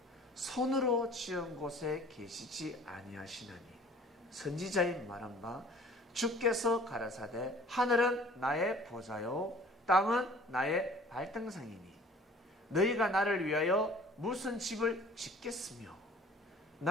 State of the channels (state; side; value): normal; both; correlation 0.50